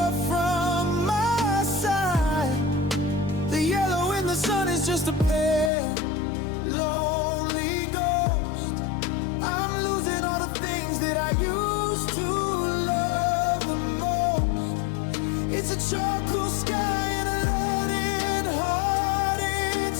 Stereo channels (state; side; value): drops out; right; at 5.7 s